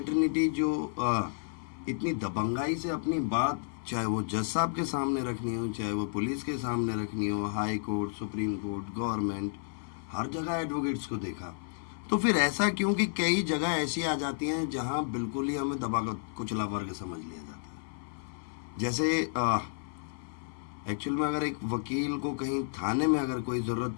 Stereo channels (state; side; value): silent; right; 56 dB below the other